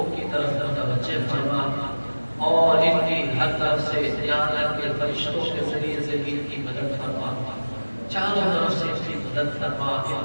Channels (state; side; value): inverted; both; correlation -1.00